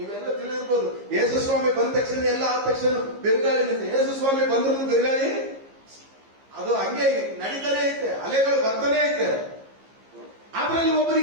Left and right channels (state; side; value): late; left; 15 ms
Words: ತಿಳಿದಿರ್ಬೋದು. ಯೇಸು ಸ್ವಾಮಿ ಬಂದ ತಕ್ಷಣ ಎಲ್ಲ ಆದ ತಕ್ಷಣ ಬಿರುಗಾಳಿ ನಿಂತ. ಯೇಸು ಸ್ವಾಮಿ ಬಂದ್ರು ಬಿರುಗಾಳಿ ಅದು ಹಂಗೆ ನಡೀತಾನೆ ಐತೆ, ಅಲೆಗಳು ಬರ್ತಾನೆ ಐತೆ. ಅದ್ರಲ್ಲಿ